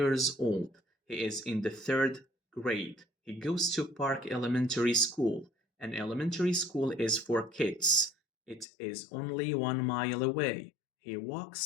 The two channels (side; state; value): right; drops out; at 8.7 s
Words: old. He is in the third grade. He goes to Park Elementary School. An elementary school is for kids. It is only 1 mile away. He